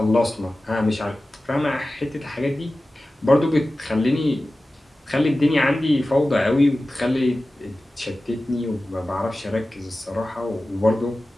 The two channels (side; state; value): both; normal; correlation 0.95